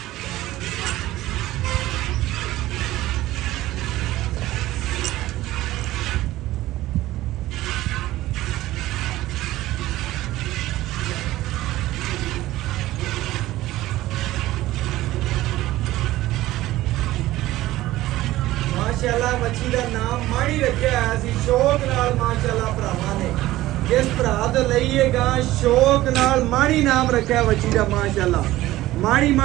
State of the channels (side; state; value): left; quieter; 16.2 dB